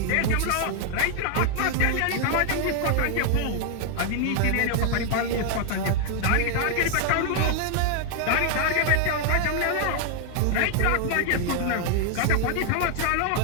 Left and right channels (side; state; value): both; different; correlation 0.00